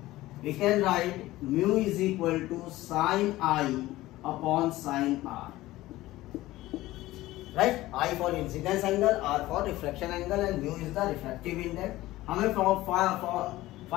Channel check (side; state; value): right; quieter; 17.0 dB